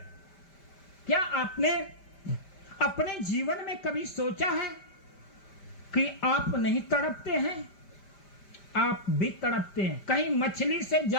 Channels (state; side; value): late; right; 5.1 ms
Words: क्या आपने अपने जीवन में कभी सोचा है कि आप नहीं तड़पते हैं? आप भी तड़पते हैं, कहीं मछली से